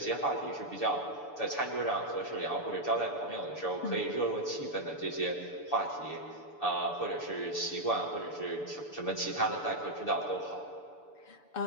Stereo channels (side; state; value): right; late; 6.9 ms